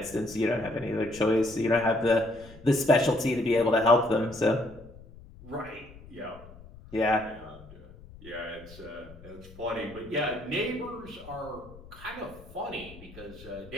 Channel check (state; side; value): noise; left; rumble, 19 dB below the sound